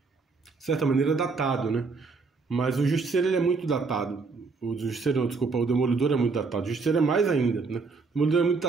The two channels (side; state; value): left; quieter; 4.4 dB